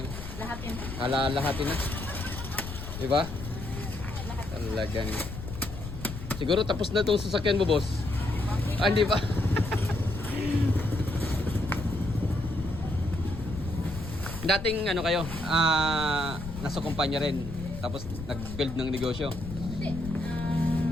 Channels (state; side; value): noise; left; rumble, 9 dB below the sound